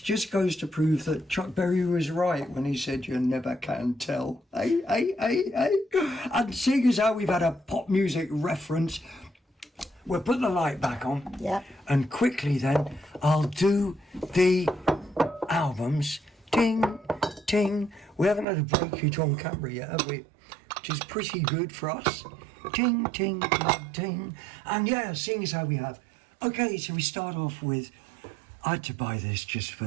just goes to prove that Chuck Berry was right when he said you never can tell. Hey. And seeing as how we've had a pop music reference, we'll put the light back on. Yeah. And quickly then, I'll do the albums. Ting, ting. We haven't had a breakage on camera yet, have we? Which is pretty good for us. Ting, ting, ting, ting. And yeah, seeing as how we have. Okay, so we start off with, I had to buy this just for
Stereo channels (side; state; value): left; drops out; at 18.4 s